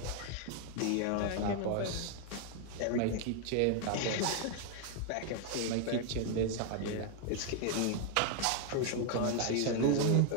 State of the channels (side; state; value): both; different; correlation 0.00